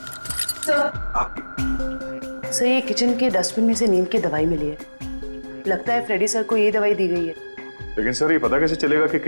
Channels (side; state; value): both; inverted; correlation -1.00